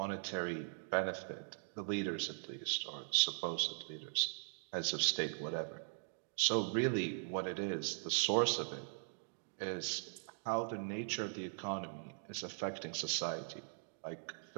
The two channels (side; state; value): left; silent; digital silence